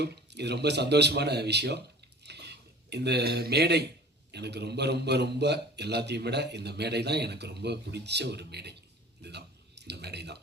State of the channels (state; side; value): normal; both; correlation 0.44